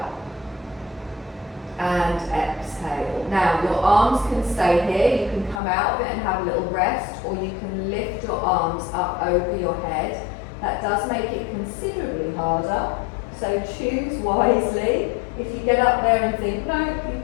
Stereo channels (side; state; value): right; drops out; at 5.6 s